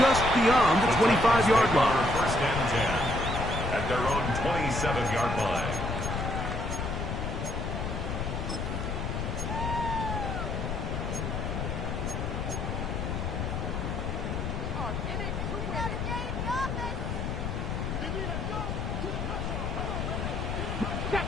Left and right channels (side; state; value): left; noise; rumble, 2 dB below the sound